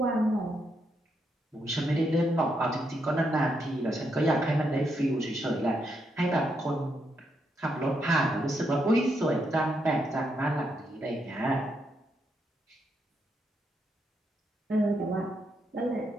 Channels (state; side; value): normal; both; correlation 0.79